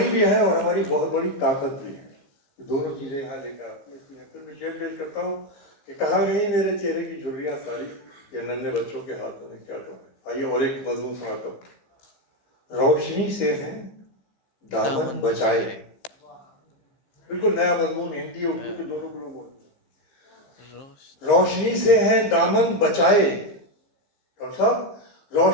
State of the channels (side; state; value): right; late; 15 ms